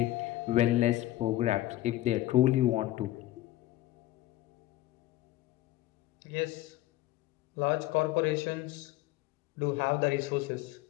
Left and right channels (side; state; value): right; quieter; 15.6 dB